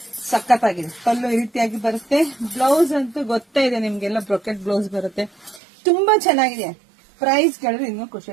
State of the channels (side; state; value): left; drops out; at 5.6 s